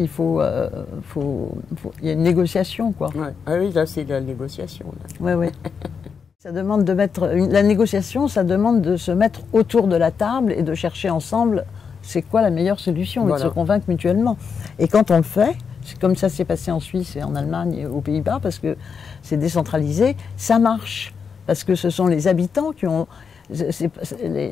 faut, il y a une négociation, quoi. Ah oui, là, c'est de la négociation. Oui. Ça demande la négociation, ça demande de se mettre autour de la table et de chercher ensemble c'est quoi la meilleure solution et de se convaincre mutuellement. Et quand on le fait, c'est comme ça s'est passé en Suisse et en Allemagne et aux Pays-Bas, parce que c'est décentralisé, ça marche. Parce que ce sont les habitants qui ont...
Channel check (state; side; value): quieter; right; 6.1 dB